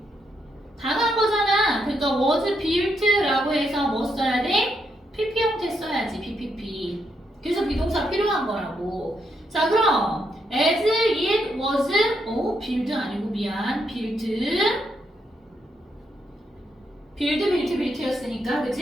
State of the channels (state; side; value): normal; both; correlation 0.79